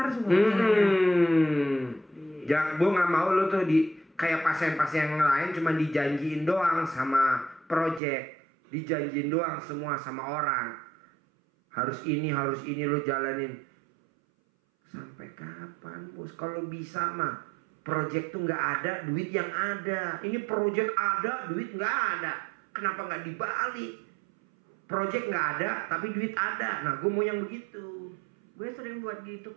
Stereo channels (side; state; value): left; drops out; at 8.0 s